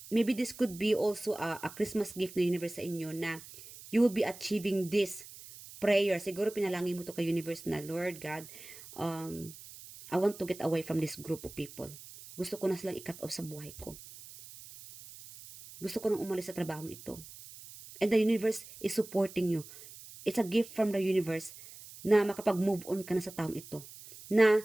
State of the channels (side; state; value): right; noise; hiss, 16 dB below the sound